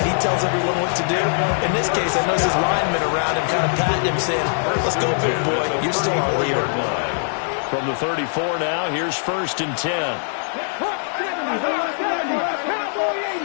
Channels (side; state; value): right; silent; digital silence